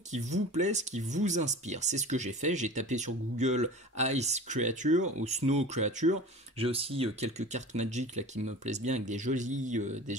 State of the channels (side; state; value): both; normal; correlation 0.37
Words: qui vous plaisent, qui vous inspirent. C'est ce que j'ai fait. J'ai tapé sur Google Ice Creature ou Snow Creature. J'ai aussi quelques cartes Magic là qui me plaisent bien avec des